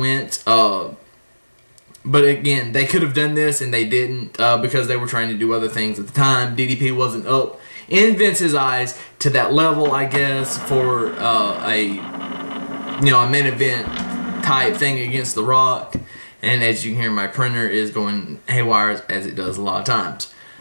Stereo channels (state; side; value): inverted; both; correlation -1.00